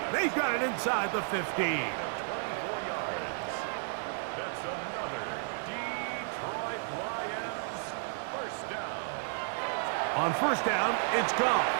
They've got it inside the 15. On 1st down, it's Goff.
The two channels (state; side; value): silent; left; digital silence